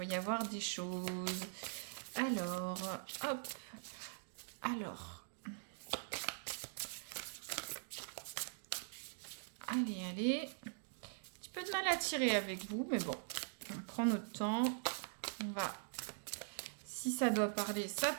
y avoir des choses. Alors, hop. Alors. Allez, allez. Un petit peu de mal à tirer avec vous, mais bon, on prend notre temps. On va... Si ça doit parler, ça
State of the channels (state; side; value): silent; left; digital silence